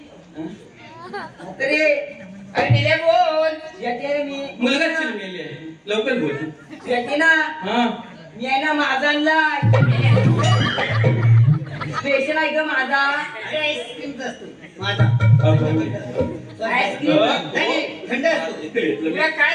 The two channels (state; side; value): identical; both; correlation 1.00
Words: म्हातारे अरे निल्या बोल तुझ्याची आहे ना मी मुलगा चिरलेली आहे लवकर बोल तुझ्याची ना हा मी आहे ना माझा आणलाय स्पेशल आहे का माझा अरे आईस्क्रीमचा असतो माझा आईस्क्रीम नाही, थंड असतो. तुला